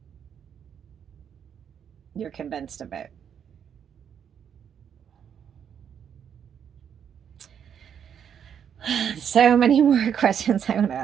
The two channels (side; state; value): left; quieter; 8.2 dB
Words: You're convinced of it. So many more questions I want to